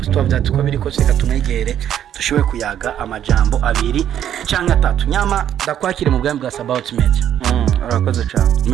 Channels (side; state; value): left; quieter; 10.4 dB